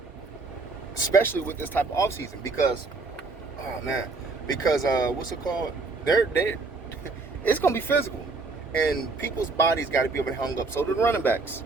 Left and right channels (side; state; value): left; quieter; 3.8 dB